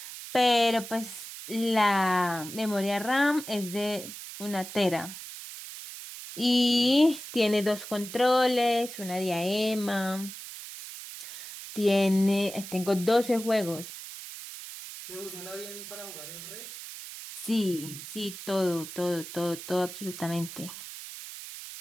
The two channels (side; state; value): right; noise; hiss, 11 dB below the sound